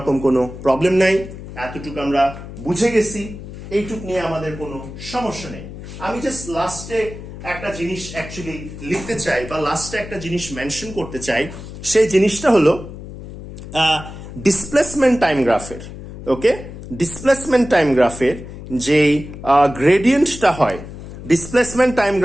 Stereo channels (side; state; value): left; noise; hum, 12 dB below the sound